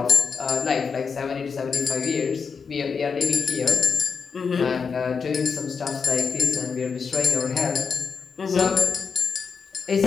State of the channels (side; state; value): right; quieter; 5.7 dB